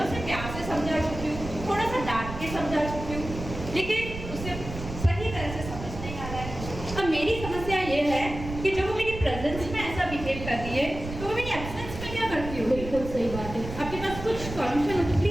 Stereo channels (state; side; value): noise; right; rumble, 9 dB below the sound